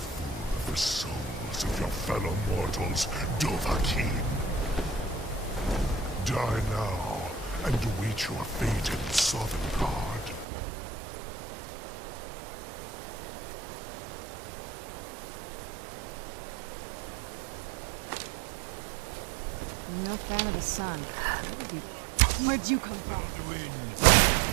of the souls of your fellow mortals, Dovahkiin. Die now, and await your fate in Sovngarde. I'm no fan of the sun. Where'd you come from? Alduin!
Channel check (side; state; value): left; drops out; at 10.5 s